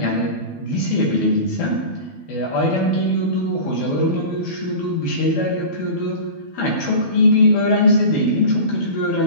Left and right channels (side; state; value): right; late; 12 ms